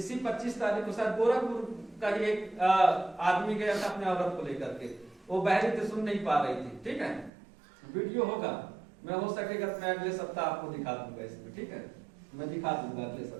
25 तारीख को शायद गोरखपुर का ही एक आदमी गया था अपने औरत को लेकर के, वो बहरी थी, सुन नहीं पा रही थी, ठीक है। वीडियो होगा, मैं हो सकेगा मैं अगले सप्ताह आपको दिखा दूंगा इसमें, ठीक है, मैं दिखा दूंगा अगले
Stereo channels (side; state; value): left; drops out; at 7.3 s